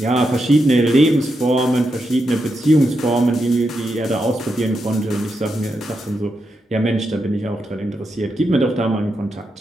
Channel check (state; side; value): normal; both; correlation 0.85